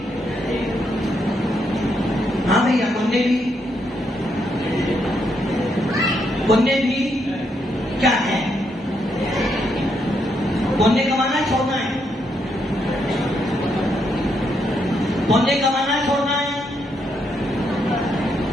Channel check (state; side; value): normal; both; correlation 0.78